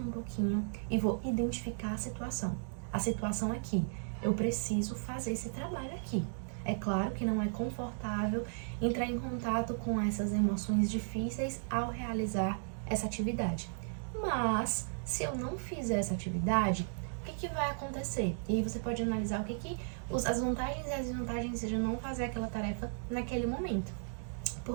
pouquinho e vou identificar a situação. A situação aqui, eu preciso fazer esse trabalho aqui. É claro que não é confortável entrar em contato com essas emoções difíceis ao realizar essa atividade. Mas, se eu não fizer essa atividade, o que vai acontecer? E aí você pode analisar as vantagens e as desvantagens de não fazer aquela tarefa naquele momento.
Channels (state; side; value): silent; left; digital silence